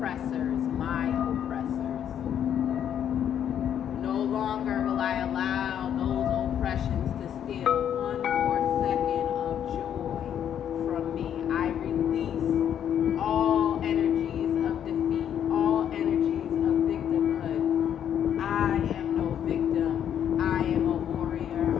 my oppressors. No longer will I allow those oppressions to steal one more second of joy from me. I release all energies of defeat, all energies of victimhood. I am no victim. I am a warrior.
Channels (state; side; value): quieter; right; 9.4 dB